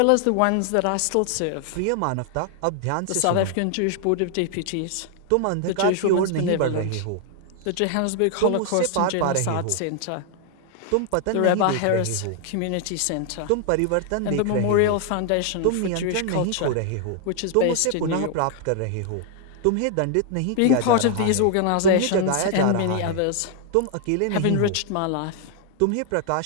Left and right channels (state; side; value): different; both; correlation 0.00